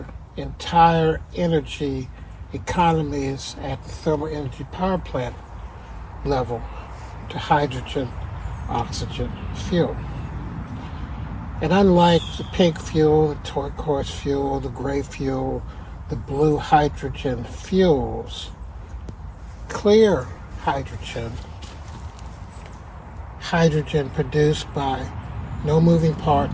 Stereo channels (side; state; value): both; identical; correlation 1.00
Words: entire energy economies at the thermal energy power plant level to hydrogen, oxygen fuel. And unlike the pink fuel, the turquoise fuel, the gray fuel, the blue hydrogen fuels, clear hydrogen produced by no moving